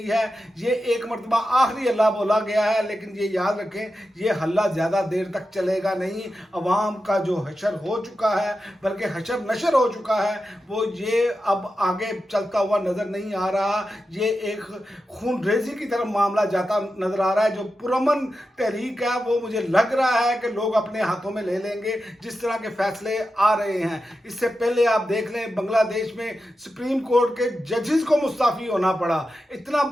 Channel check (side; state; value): both; normal; correlation 0.90